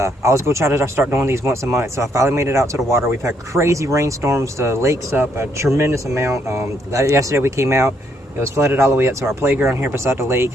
was going to try to start doing these once a month. So I finally made it out to the water. We've had crazy rainstorms. The lake's up a tremendous amount. Yesterday we came out. It was flooded all the way up to our playground here beside the lake,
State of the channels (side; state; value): both; normal; correlation 0.73